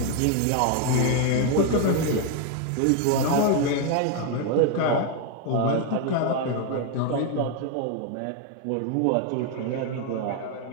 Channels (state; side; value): different; both; correlation 0.01